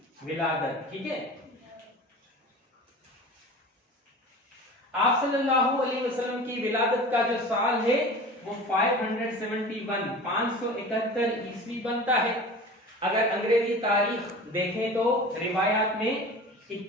विलादत। ठीक है, आप सल्लल्लाहु अलैहि वसल्लम की विलादत का जो साल है वो 571 ईस्वी बनता है। अगर अंग्रेजी तारीख देखें तो रिवायात में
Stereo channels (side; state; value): both; normal; correlation 0.37